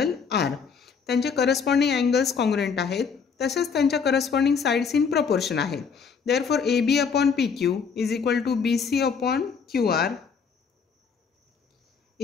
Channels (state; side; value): quieter; right; 6.0 dB